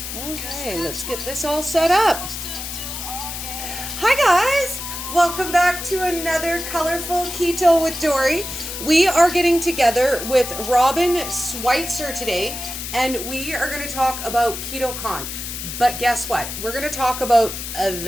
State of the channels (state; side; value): noise; left; hiss, 7 dB below the sound